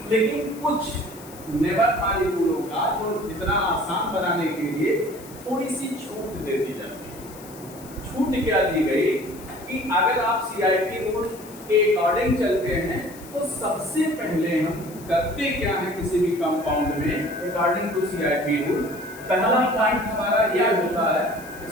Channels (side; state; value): left; noise; hiss, 19 dB below the sound